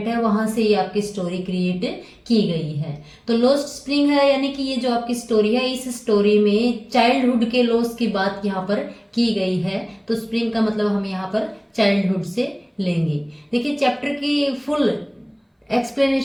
है वहां से ये आपकी स्टोरी क्रिएट की गई है। तो लॉस्ट स्प्रिंग है, यानी कि ये जो आपकी स्टोरी है, इस स्टोरी में चाइल्डहुड के लॉस की बात यहाँ पर की गई है। तो स्प्रिंग का मतलब हम यहाँ पर चाइल्डहुड से लेंगे। देखिए, चैप्टर की फुल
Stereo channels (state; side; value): identical; both; correlation 1.00